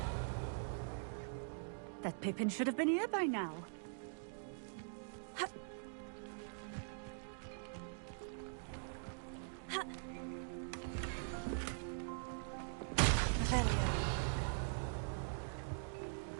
That Pippin should have been here by now. Revelio.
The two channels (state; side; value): silent; left; digital silence